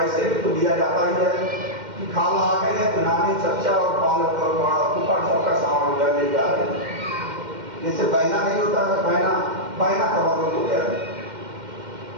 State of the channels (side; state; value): left; late; 2.1 ms